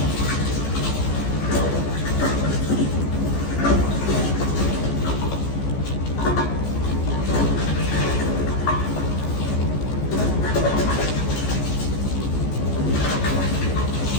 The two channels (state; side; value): late; right; 14 ms